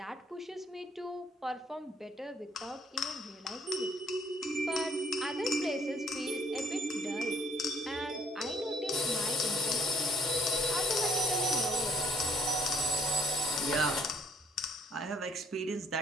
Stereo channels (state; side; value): normal; both; correlation 0.63